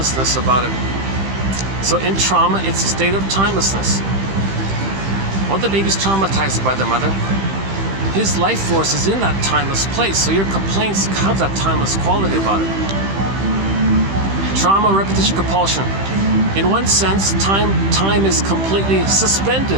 about it. So in trauma, it's a state of timelessness. When the baby's traumatized by the mother, his life force is in that timeless place. So your complaints have that timeless quality about it. Trauma, repetition, compulsion. In one sense, time is completely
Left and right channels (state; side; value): late; left; 15 ms